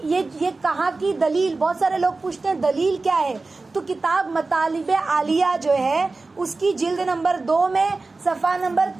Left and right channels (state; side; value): quieter; left; 3.6 dB